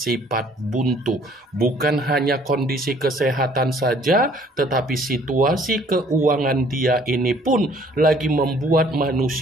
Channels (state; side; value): normal; both; correlation 0.58